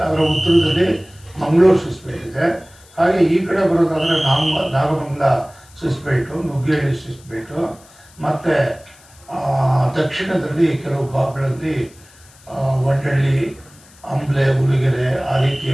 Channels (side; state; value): left; noise; hiss, 26 dB below the sound